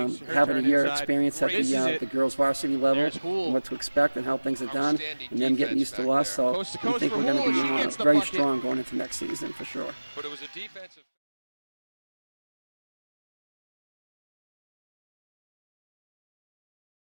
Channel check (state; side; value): inverted; both; correlation -1.00